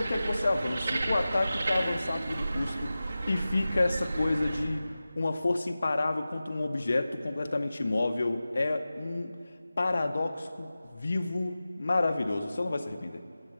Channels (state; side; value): inverted; both; correlation -0.95